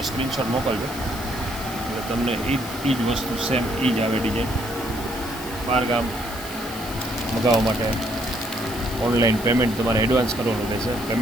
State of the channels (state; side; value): noise; left; hiss, 13 dB below the sound